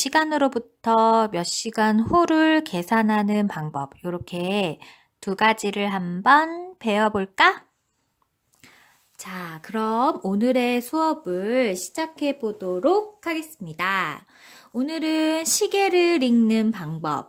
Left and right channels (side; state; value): both; identical; correlation 1.00